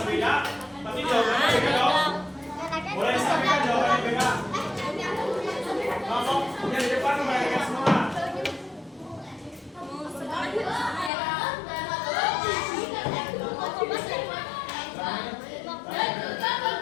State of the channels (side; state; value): right; drops out; at 11.1 s